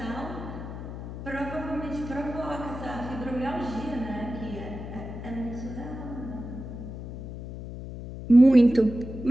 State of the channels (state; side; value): noise; left; hum, 9 dB below the sound